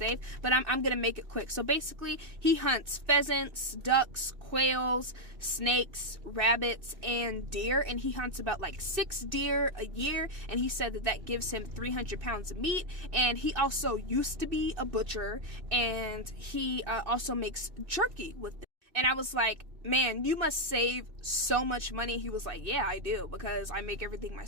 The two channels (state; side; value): late; left; 2.6 ms